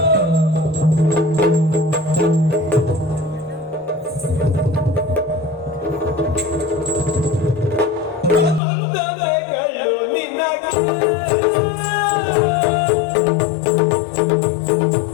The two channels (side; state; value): right; drops out; at 8.6 s